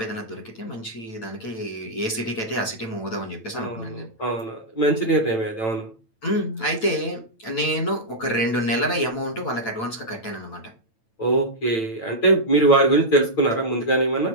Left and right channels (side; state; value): right; late; 9.0 ms